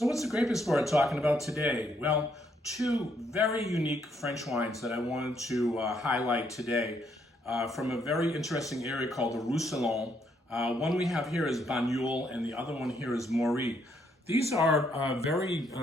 what's the Grape Explorer talking about today? Well, two very unique French wines that I wanted to highlight today from a very interesting area called the Roussillon. One we have here is Banyuls and the other one here is Maury. These are very,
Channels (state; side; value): normal; both; correlation 0.72